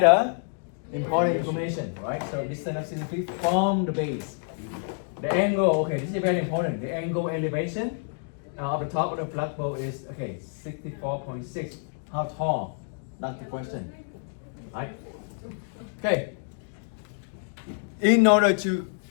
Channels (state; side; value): silent; right; 60 dB below the other